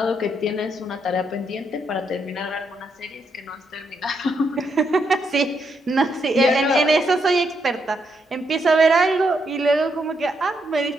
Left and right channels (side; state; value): both; normal; correlation 0.78